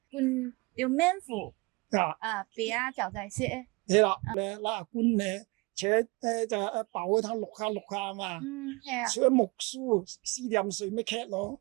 換條面褲，別啊就仔色誒。係啦，咧拉官咧，且就爆嗰湯淥下嘛，係啊。除咗木梳試點水咩劇咯。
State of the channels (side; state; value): left; quieter; 26.6 dB